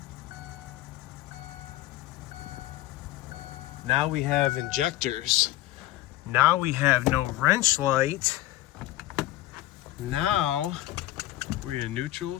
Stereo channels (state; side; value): quieter; right; 15.9 dB